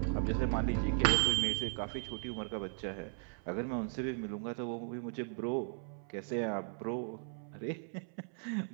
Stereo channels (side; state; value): left; silent; 53 dB below the other